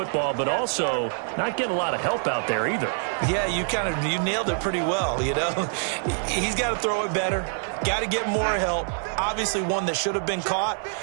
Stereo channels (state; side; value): silent; left; 61 dB below the other